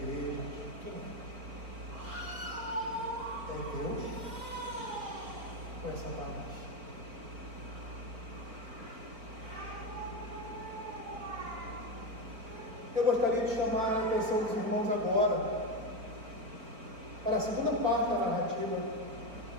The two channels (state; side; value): late; left; 4.4 ms